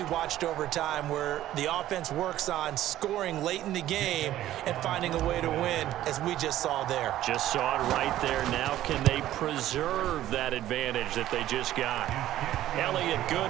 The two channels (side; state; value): left; quieter; 13.5 dB